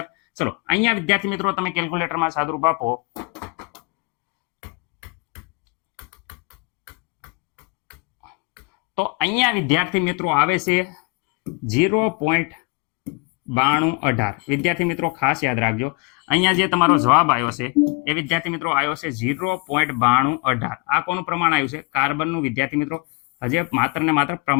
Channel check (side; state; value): right; quieter; 30.1 dB